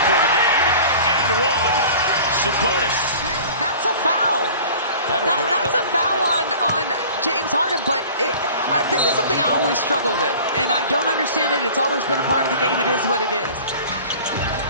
the game. And one. Sabonis. That's a foul. That's a foul on James Harden, but this is something I always struggle with, and I don't understand it. It's always been a part of the game. It is what it is.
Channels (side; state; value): both; inverted; correlation -0.43